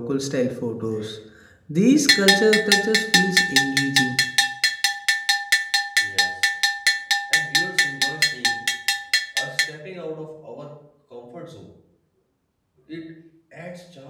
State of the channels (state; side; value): identical; both; correlation 1.00